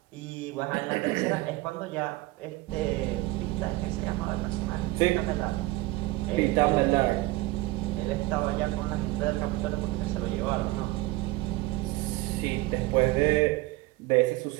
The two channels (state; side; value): quieter; left; 19.2 dB